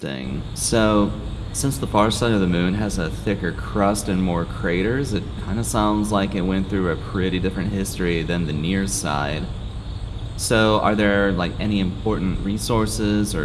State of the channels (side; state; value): both; identical; correlation 1.00